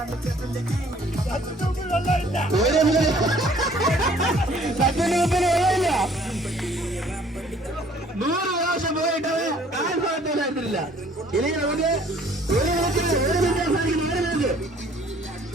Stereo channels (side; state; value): both; normal; correlation 0.57